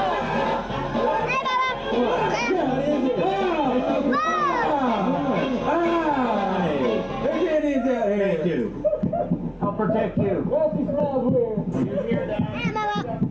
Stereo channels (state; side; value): identical; both; correlation 1.00